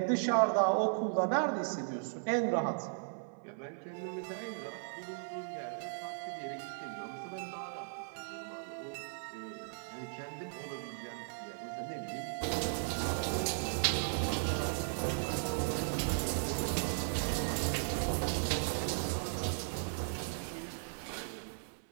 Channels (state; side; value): silent; left; 53 dB below the other